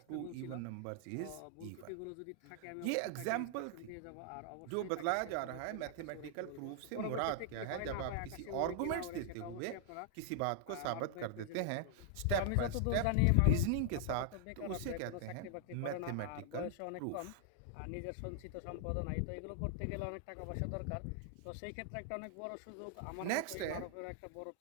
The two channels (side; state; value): both; different; correlation 0.00